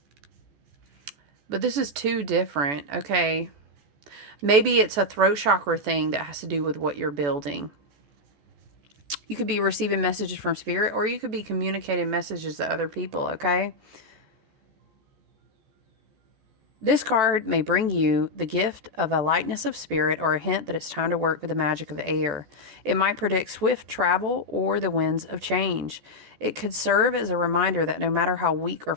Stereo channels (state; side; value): late; left; 14 ms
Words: But this is two different. Okay. Maybe it's a throat chakra thing that has to do with what you're building. You could be receiving messages from spirit, or you could be communicating messages to other people, okay? This card may bring you the gift of a lightness of spirit or a hint that it's time to work with the magic of air. It might predict swift travel or the winds of change. It could serve as a reminder that no matter how weak or